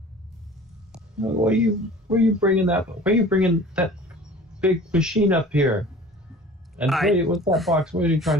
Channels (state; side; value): normal; both; correlation 0.44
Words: Where are you bringing that big machine up here? And wait, what's that box? Where are you trying